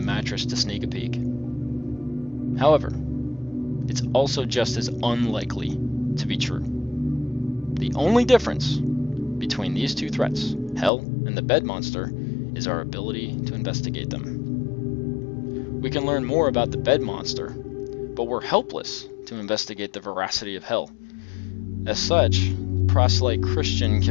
mattress to sneak a peek. However, it's also just as unlikely to be true. The only difference between these two threats, hell and the bed monster, is our ability to investigate them. We can learn more about the bed monster, but we're helpless to investigate the veracity of hell. As such, the proselyte Christian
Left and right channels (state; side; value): drops out; right; at 10.9 s